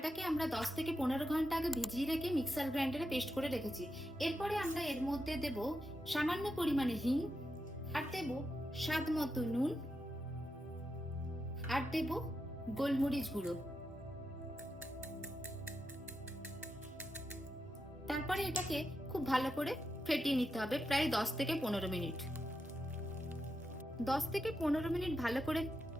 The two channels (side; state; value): both; normal; correlation 0.86